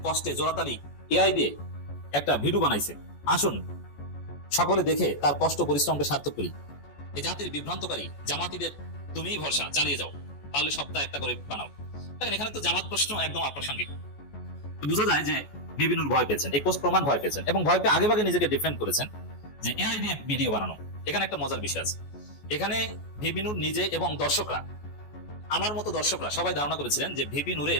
কষ্টে জোরাতালি এআই দিয়ে একটা ভিডিও বানাইছে, আসুন সকলে দেখে তার কষ্ট পরিশ্রমকে সার্থক করি। এই জাতির বিভ্রান্তকারী জামাতিদের তুমিই ভরসা, চালিয়ে যাও, পারলে সপ্তাহে একটা করে বানাও। দেখেন, এখানে তো জামাত প্রশ্ন একদম অপ্রাসঙ্গিক। বোঝা যায় যে ভিপি নূর ভয় পেয়েছেন, এই পোস্ট প্রমাণ ভয় পেয়েছেন এবং ভয় পেয়ে আগেভাগে নিজেকে ডিফেন্ড করেছেন যে এআই দিয়ে ভিডিও বানানো। এখানে একটা মজার বিষয় আছে, এখানে ভিপি নূর নিজে এবং দর্শকরা, আমার মতো দর্শকরা সবাই ধারণা করেছিলেন যে ভিপি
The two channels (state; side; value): late; right; 14 ms